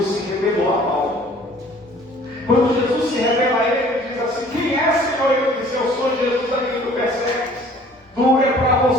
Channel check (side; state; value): both; normal; correlation 0.53